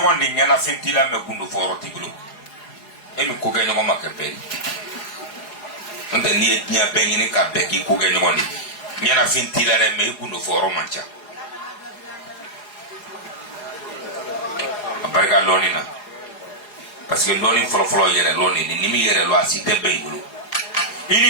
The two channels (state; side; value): late; right; 4.8 ms